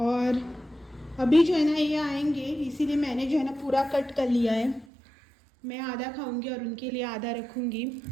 अभी जो है ना ये आएंगे, इसीलिए मैंने जो है ना पूरा कट कर लिया है। मैं आधा खाऊंगी और उनके लिए आधा रखूंगी।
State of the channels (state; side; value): drops out; left; at 4.9 s